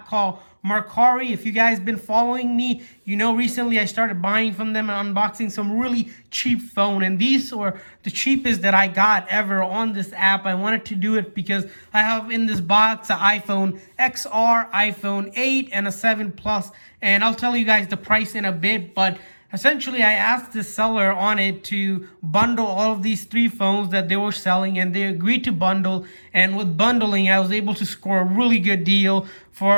called Mercari. If you guys been following me, you know recently I started buying from them and unboxing some really cheap phone. And these were the cheapest that I got ever on this app. I wanted to do it because I have in this box an iPhone XR, iPhone 8, and a 7 Plus. And I'll tell you guys the price in a bit, but essentially, I asked the seller on it to bundle all of these 3 phones that they were selling, and they agreed to bundle. And with bundling, I was able to score a really good deal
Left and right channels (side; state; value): both; inverted; correlation -1.00